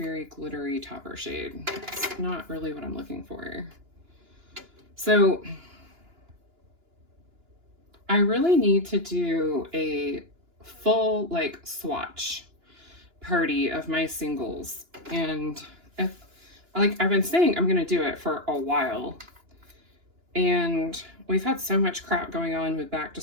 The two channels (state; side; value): late; left; 2.9 ms